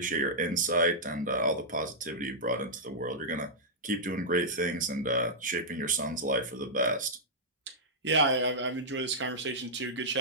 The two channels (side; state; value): both; normal; correlation -0.10